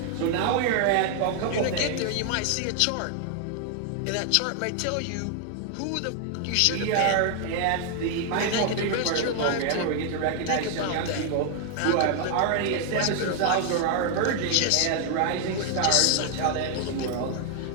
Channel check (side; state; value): both; different; correlation 0.00